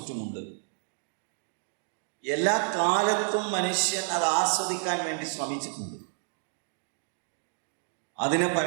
എല്ലാ കാലത്തും മനുഷ്യൻ അത് ആസ്വദിക്കാൻ വേണ്ടി ശ്രമിച്ചിട്ടുണ്ട്. അതിനെ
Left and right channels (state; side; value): silent; left; digital silence